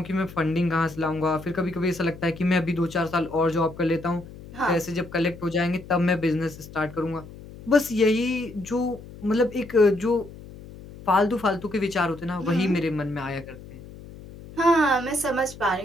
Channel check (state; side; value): noise; left; hum, 16 dB below the sound